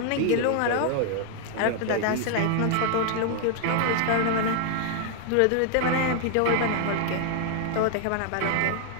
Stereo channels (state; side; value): different; both; correlation 0.00